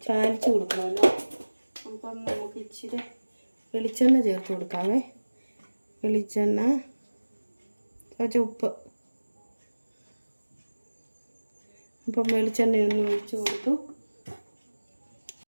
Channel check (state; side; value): inverted; both; correlation -1.00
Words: ചാലിച്ച് കൊടുക്കണമല്ലോ. അപ്പം നമുക്ക് ഇച്ചിരി വെളിച്ചെണ്ണ ചേർത്ത് കൊടുക്കാവേ. വെളിച്ചെണ്ണ, കുറച്ച് ഉപ്പ്. അപ്പം വെളിച്ചെണ്ണയൊന്ന് ഒഴിച്ച് കൊടുത്തു.